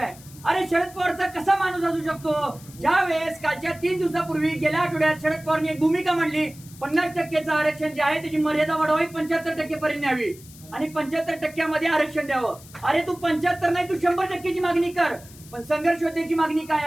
अरे शरद पवारचा कसा माणूस असू शकतो? ज्या वेळेस कालच्या 3 दिवसापूर्वी गेल्या आठवड्यात शरद पवारने एक भूमिका मांडली, 50% आरक्षण जे आहे त्याची मर्यादा वाढवावी, 75% पर्यंत न्यावी आणि 75% आरक्षण द्यावं. अरे तू 75 नाही, तू 100%ची मागणी कर. पण संघर्ष योद्ध्याची मागणी काय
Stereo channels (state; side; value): noise; left; hiss, 21 dB below the sound